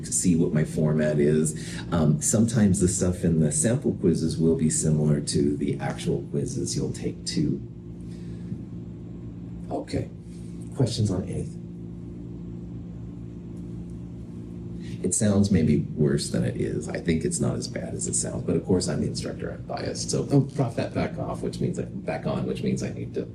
see what my format is. Sometimes the stuff in the sample quizzes will be similar to the actual quizzes you'll take too. Okay, questions on anything? It sounds maybe worse than it is. I think it's not as bad as it sounds, but of course I'm the instructor, I'm biased. So prop that back off, which means back on, which means I need to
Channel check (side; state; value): both; identical; correlation 1.00